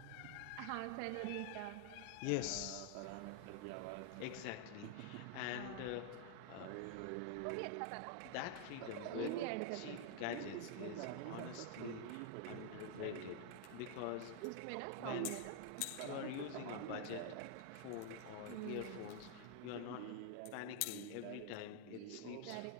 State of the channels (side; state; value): both; different; correlation 0.00